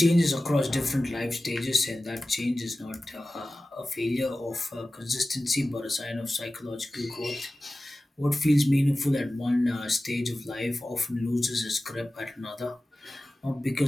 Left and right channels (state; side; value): normal; both; correlation 0.96